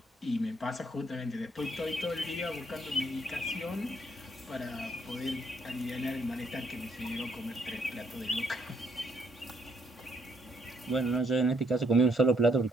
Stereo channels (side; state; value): both; normal; correlation 0.71